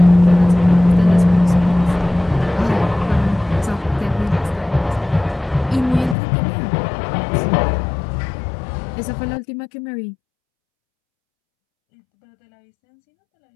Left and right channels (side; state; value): right; drops out; at 6.2 s